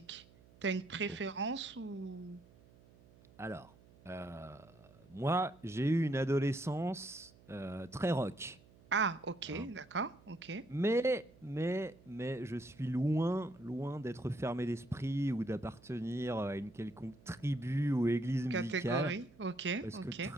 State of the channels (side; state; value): right; noise; hum, 25 dB below the sound